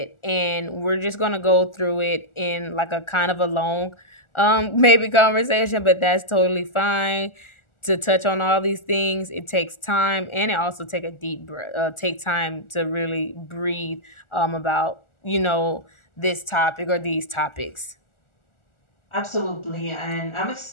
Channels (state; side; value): late; right; 1.4 ms